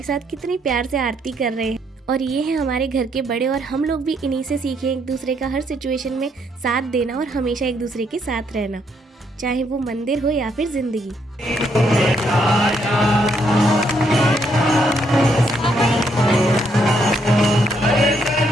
साथ कितनी प्यार से आरती कर रहे हैं। और ये है हमारे घर के बड़े और हम लोग भी इन्हीं से सीखे एक दूसरे का हर सिचुएशन में साथ देना और हमेशा एक दूसरे के साथ रहना, चाहे वो मंदिर हो या फिर जिंदगी।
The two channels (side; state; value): both; normal; correlation 0.73